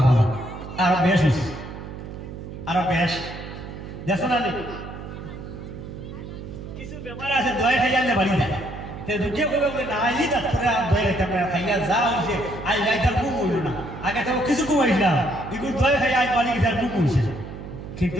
করো আর বেশ আরো বেশ দেখো না কিছু বেমার আছে দয়া খাইয়া বাড়ি যায় দুটিয়ে কবে বলে না আইলি ডাক্তারে দয়া খাইতে আমরা খাইয়া যা হয়েছে আই গাইটার ঘুম হইল না আগে তো কিছু ঘুমাইছিলাম এগুলো দয়া খাইয়া আজ বাড়ি গেছে ঘুম হয়েছে কিন্তু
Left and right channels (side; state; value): right; noise; hum, 11 dB below the sound